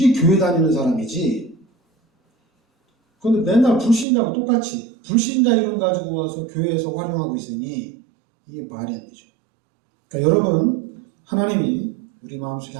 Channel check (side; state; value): left; drops out; at 4.0 s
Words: 교회 다니는 사람이지. 그런데 맨날 불신자하고 똑같이 불신자 이름 가지고 와서 교회에서 활용하고 있으니 이게 말이 안 되죠. 그러니까 여러분 하나님이 우리 마음속에